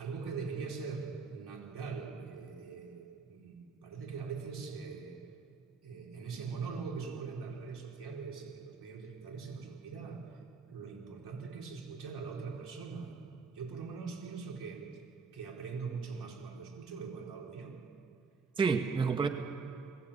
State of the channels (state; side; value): quieter; left; 5.0 dB